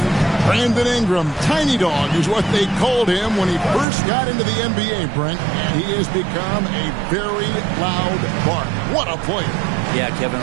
Brandon Ingram, Tiny Dog is what they called him when he first got into the NBA, Brent. And he has become a very loud bark. What a player. Yeah, Kevin,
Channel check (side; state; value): left; drops out; at 3.9 s